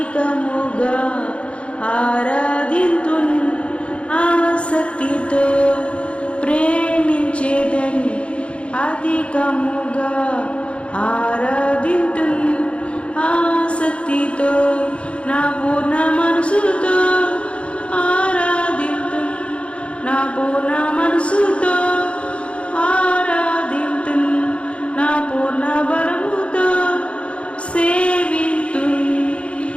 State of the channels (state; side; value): late; right; 0.060 ms